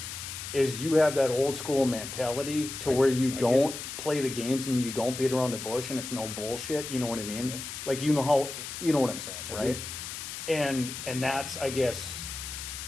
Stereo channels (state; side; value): noise; left; hiss, 8 dB below the sound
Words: is you have that old school mentality to where you don't play the games and you don't beat around the bush and it's no bullshit. You know what I mean? Yeah. Like you know what I'm saying, right? And that's, I guess,